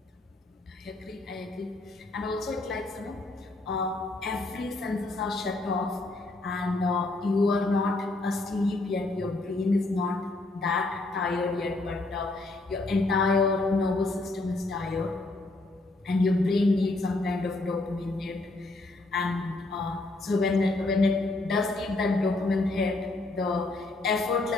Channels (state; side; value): quieter; right; 3.0 dB